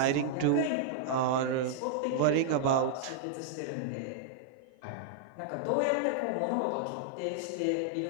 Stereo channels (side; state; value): both; different; correlation -0.01